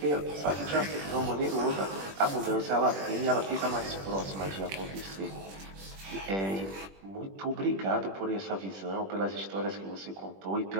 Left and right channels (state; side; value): late; left; 21 ms